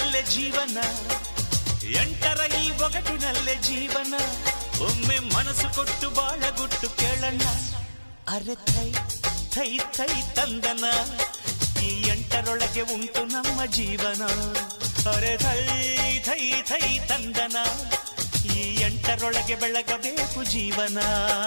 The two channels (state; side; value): inverted; both; correlation -1.00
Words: ಜೀವನ, ಎಂಟರ ಈ ಒಗಟಿನಲ್ಲೇ ಜೀವನ. ಒಮ್ಮೆ ಮನಸ್ಸು ಕೊಟ್ಟು ಬಾಳಗುಟ್ಟು ಕೇಳಣ್ಣ. ಅರೆ ಥೈ ಥೈ ಥೈ ತಂದನ, ಈ ಎಂಟರೊಳಗೆ ಉಂಟು ನಮ್ಮ ಜೀವನ. ಅರೆ ಥೈ ಥೈ ಥೈ ತಂದನ, ಈ ಎಂಟರೊಳಗೆ ಬೆಳಗಬೇಕು ಜೀವನ.